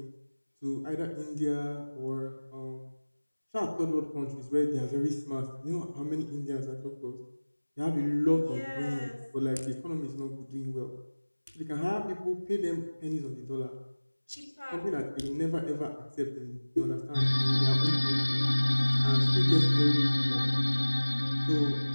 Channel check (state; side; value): inverted; both; correlation -1.00